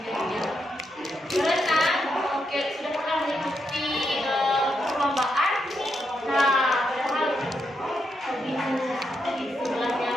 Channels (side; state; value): both; normal; correlation 0.82